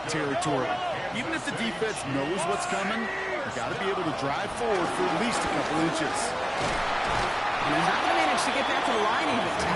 territory. Even if the defense knows what's coming, you got to be able to drive forward for at least a couple inches. And he's not going to manage to get back to the line even.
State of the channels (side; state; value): left; noise; hum, 25 dB below the sound